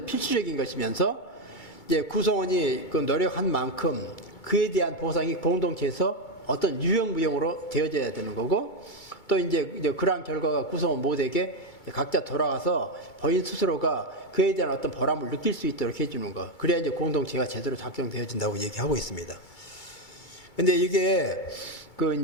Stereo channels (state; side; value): late; right; 2.3 ms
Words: 것이면서 이제 구성원이 그 노력한 만큼 그에 대한 보상이 공동체에서 어떤 유형무형으로 되어져야 되는 거고 또 이제 그러한 결과가 구성원 모두에게 각자 돌아가서 본인 스스로가 그에 대한 어떤 보람을 느낄 수 있도록 해주는 거. 그래야 이제 공동체가 제대로 작동되어진다고 얘기하고 있습니다. 근데 이게 그